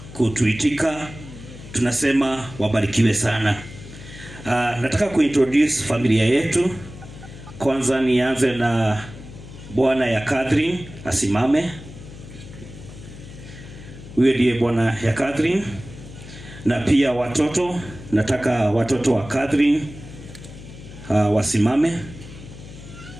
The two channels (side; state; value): left; noise; hum, 15 dB below the sound